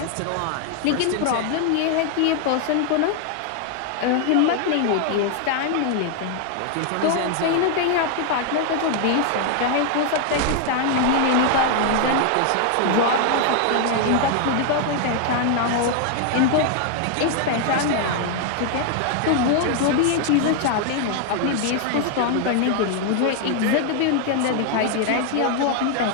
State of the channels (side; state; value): both; different; correlation 0.00